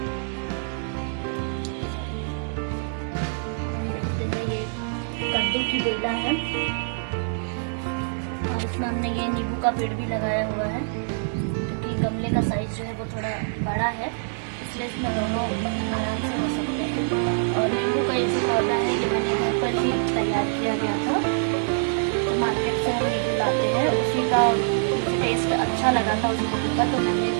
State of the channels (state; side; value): silent; left; digital silence